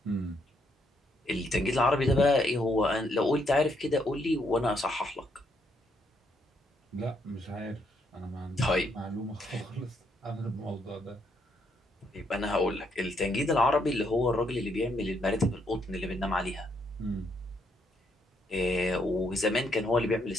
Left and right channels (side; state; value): both; normal; correlation 0.74